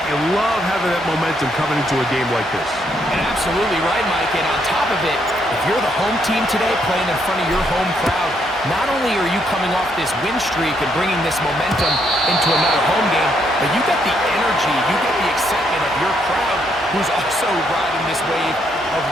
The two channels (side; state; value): both; normal; correlation 0.74